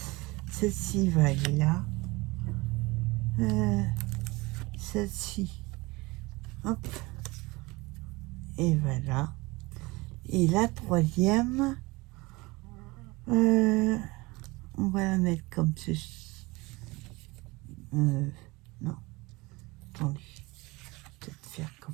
Celle-ci va aller là. Celle-ci. Hop. Et voilà. Et la troisième, on va la mettre comme ceci. Non. Attendez. Peut-être faire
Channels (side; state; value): left; quieter; 23.2 dB